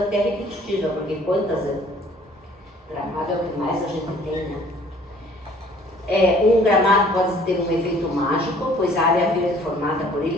repetitiva, porque quantas gramado é o que mais a gente tem, né? Um gramado pode ter um efeito mágico, pois a área verde formada por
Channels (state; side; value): normal; both; correlation 0.56